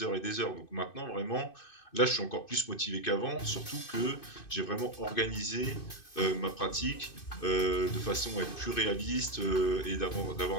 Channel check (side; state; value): right; late; 2.5 ms